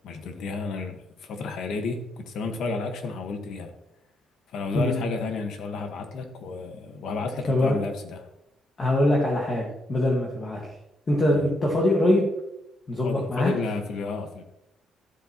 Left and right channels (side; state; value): both; normal; correlation 0.78